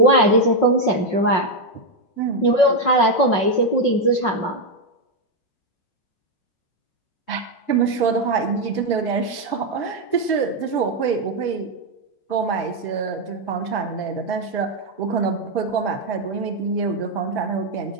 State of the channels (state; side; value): late; right; 5.5 ms